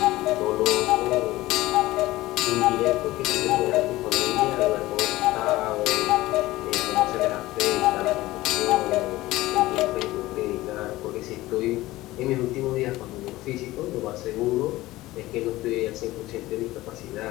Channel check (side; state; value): right; quieter; 17.7 dB